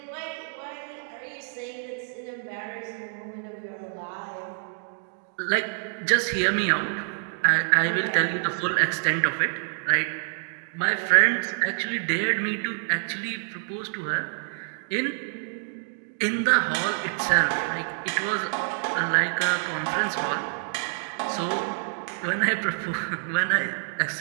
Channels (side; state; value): left; silent; digital silence